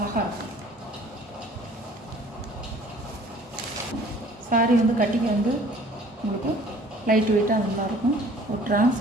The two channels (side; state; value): both; normal; correlation 0.53